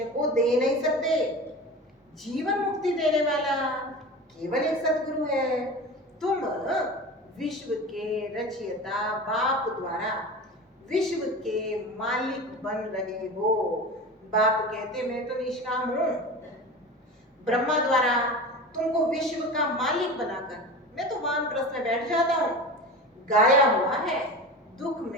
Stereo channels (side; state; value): both; normal; correlation 0.31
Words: को दे नहीं सकते। जीवन मुक्ति देने वाला केवल एक सदगुरु है। तुम विश्व के रचयिता बाप द्वारा विश्व के मालिक बन रहे हो। बाप कहते मैं तो निष्काम हूं। ब्रह्मा द्वारा तुमको विश्व का मालिक बनाकर मैं तो वानप्रस्थ में बैठ जाता हूं। गाया हुआ है दुख